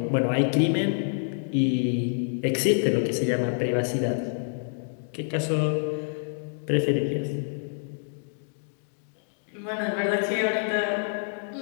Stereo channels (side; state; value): right; silent; digital silence